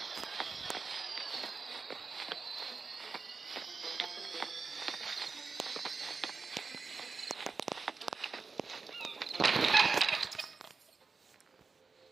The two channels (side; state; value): left; quieter; 4.6 dB